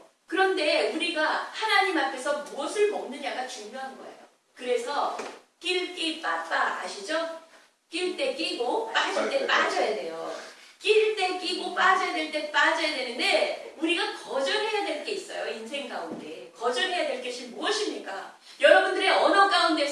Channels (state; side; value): identical; both; correlation 1.00